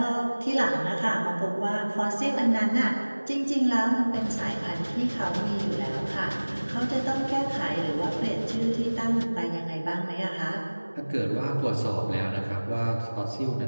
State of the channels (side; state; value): both; inverted; correlation -1.00